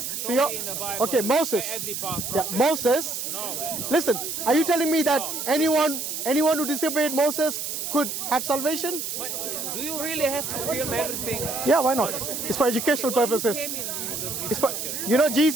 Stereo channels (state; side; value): noise; right; hiss, 4 dB below the sound